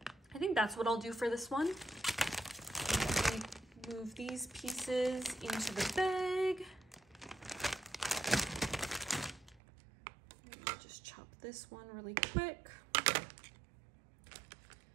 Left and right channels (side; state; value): left; drops out; at 9.6 s